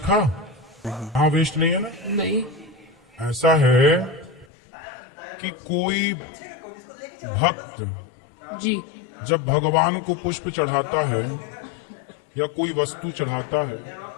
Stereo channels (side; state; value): right; drops out; at 4.5 s